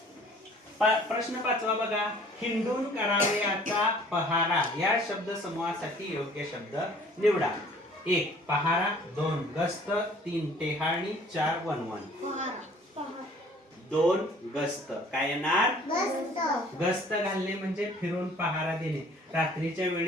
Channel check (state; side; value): normal; both; correlation 0.53